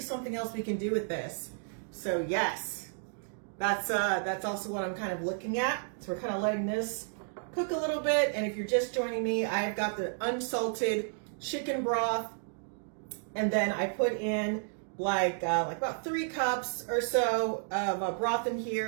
something else we can do with this. So yes, that's also what I'm kind of looking at. So we're kind of letting this cook a little bit. And if you're just joining me, I've got the unsalted chicken broth, and then I put in like about 3 cups or so of broth in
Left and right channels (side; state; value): left; silent; digital silence